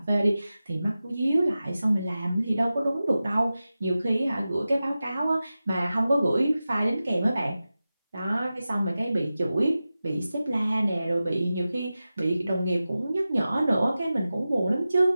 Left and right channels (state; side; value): inverted; both; correlation -0.94